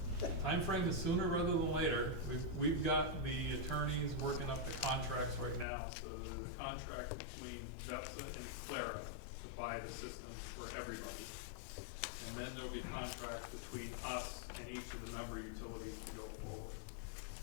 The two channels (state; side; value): drops out; right; at 5.7 s